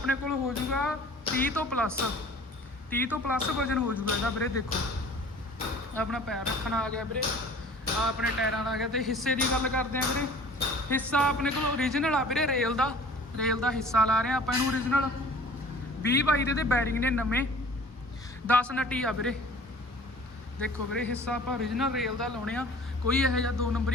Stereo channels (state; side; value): normal; both; correlation 0.47